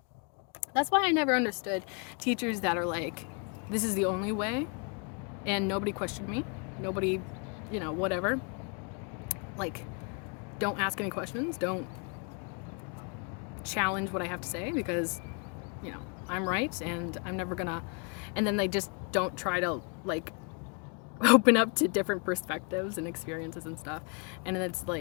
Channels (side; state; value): right; quieter; 36.4 dB